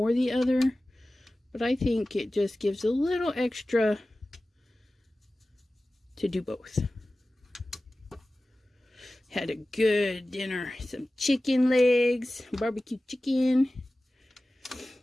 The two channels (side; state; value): both; normal; correlation 0.96